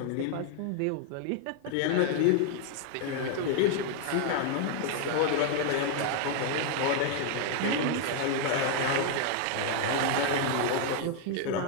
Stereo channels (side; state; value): both; different; correlation 0.00